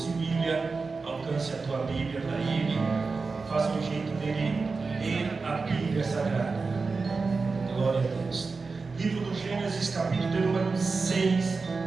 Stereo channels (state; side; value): quieter; left; 4.3 dB